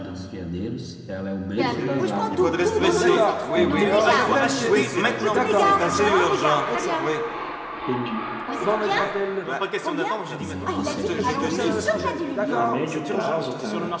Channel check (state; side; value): identical; both; correlation 1.00